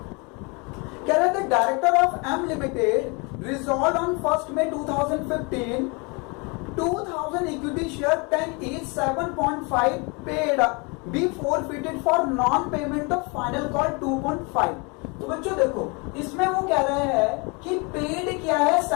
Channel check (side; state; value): right; quieter; 30.3 dB